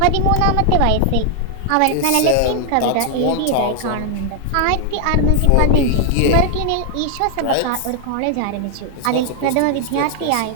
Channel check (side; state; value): both; different; correlation 0.00